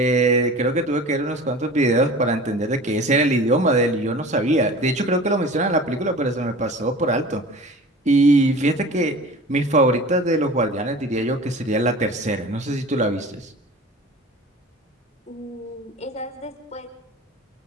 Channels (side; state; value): both; normal; correlation 0.39